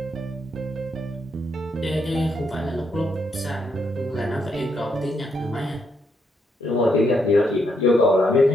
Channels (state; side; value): normal; both; correlation 0.77